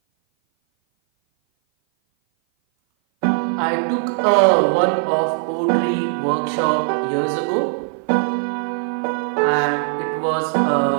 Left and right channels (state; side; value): silent; left; 57 dB below the other